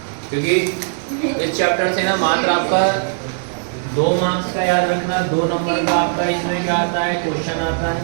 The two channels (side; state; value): left; silent; digital silence